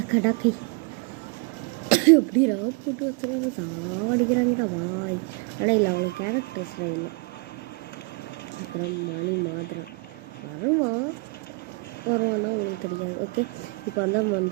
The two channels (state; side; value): quieter; left; 29.2 dB